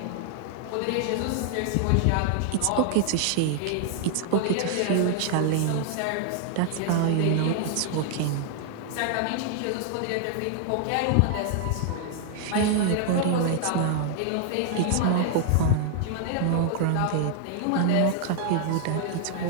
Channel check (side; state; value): both; different; correlation 0.00